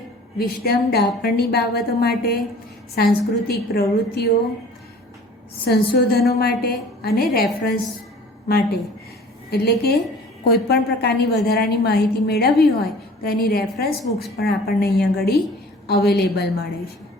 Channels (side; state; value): both; normal; correlation 0.47